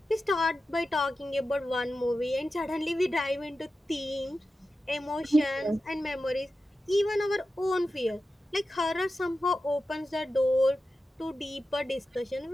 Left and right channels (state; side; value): normal; both; correlation 0.92